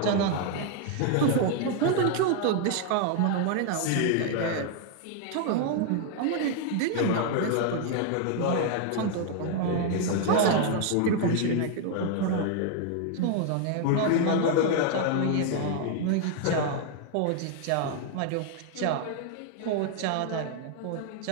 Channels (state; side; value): different; both; correlation 0.00